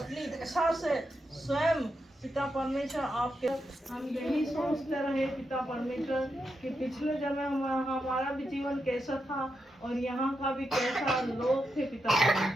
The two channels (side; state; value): both; normal; correlation 0.85